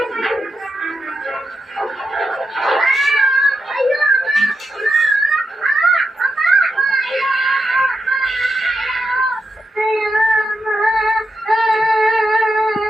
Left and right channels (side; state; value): both; normal; correlation 0.86